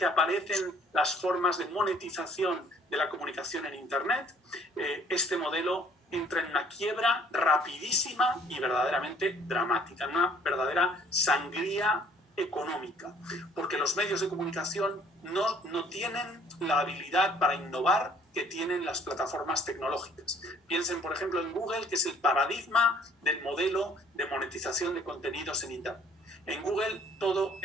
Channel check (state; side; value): normal; both; correlation 0.58